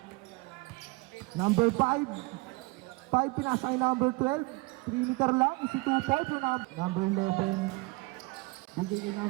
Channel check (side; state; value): left; quieter; 25.5 dB